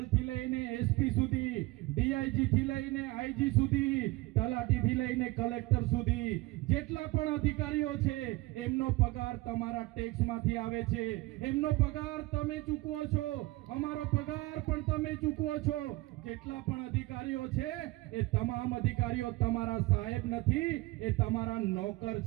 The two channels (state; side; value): quieter; left; 20.6 dB